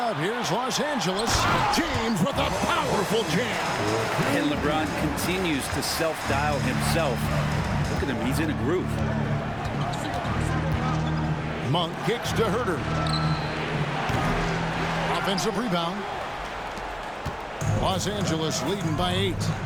here's Los Angeles. James with a powerful jam. And LeBron continues to self-dial himself. Look at him, he's in a groove. Monk kicks to Huerter. Offensive rebound. Los Angeles leading by 8.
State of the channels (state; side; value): identical; both; correlation 1.00